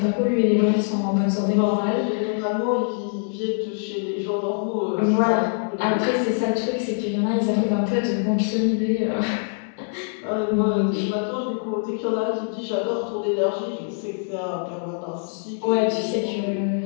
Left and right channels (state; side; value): silent; right; 63 dB below the other